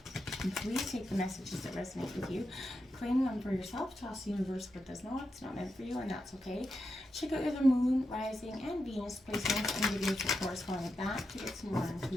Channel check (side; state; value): both; normal; correlation 0.87